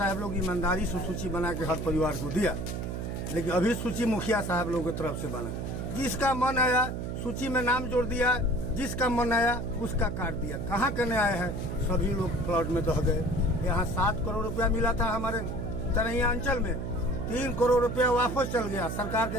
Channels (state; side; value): noise; right; hum, 4 dB below the sound